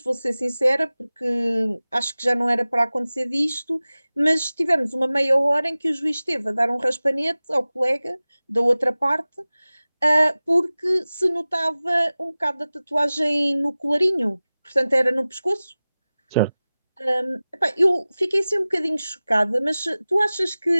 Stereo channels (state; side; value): inverted; both; correlation -0.97